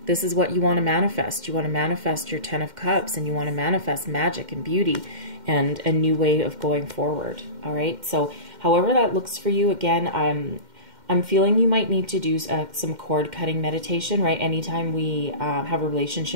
This is what you want to manifest. You want to manifest your Ten of Cups, and you want to manifest magic and beauty and a new way of going forward, all right? So However that looks for you, again, I'm feeling you might need to do some cord cutting meditation, right? Anytime we have a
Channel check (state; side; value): late; left; 2.1 ms